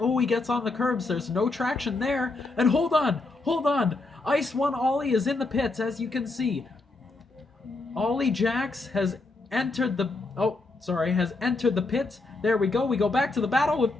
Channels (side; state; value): right; quieter; 3.3 dB